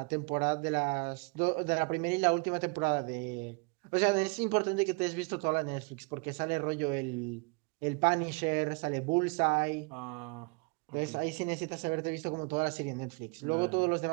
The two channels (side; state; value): left; quieter; 31.4 dB